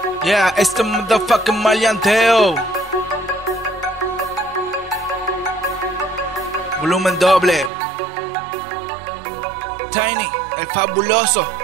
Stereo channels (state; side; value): drops out; left; at 7.7 s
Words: Yeah, it's the motherfucking Maleanteo. Volumen doble. Tiny, el fabuloso.